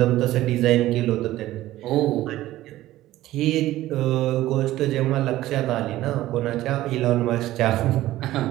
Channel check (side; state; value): left; quieter; 15.4 dB